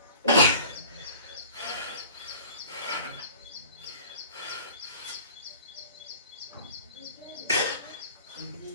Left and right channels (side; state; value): both; inverted; correlation -0.45